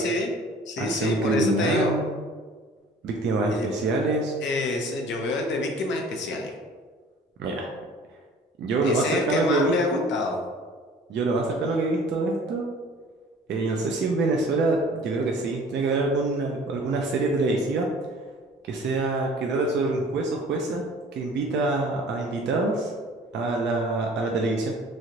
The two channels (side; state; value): both; normal; correlation 0.49